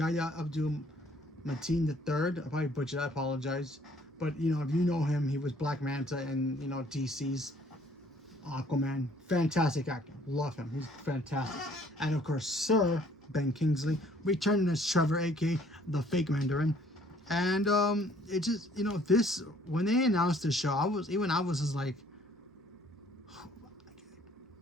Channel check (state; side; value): normal; both; correlation 0.59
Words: Abdul-Mateen III. I probably butchered that, I apologize. But, if you know him, he was Black Manta in, DC's Aquaman. Fantastic actor. Love him. He's fantastic. And, of course, Sir Ben Kingsley returning as Trevor, aka the fake Mandarin. And it just, this, when they announced the show, I was just like,